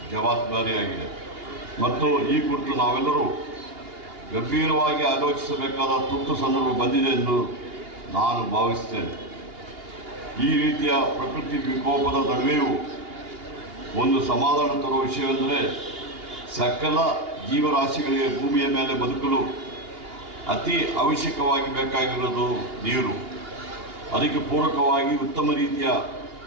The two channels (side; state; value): left; late; 2.8 ms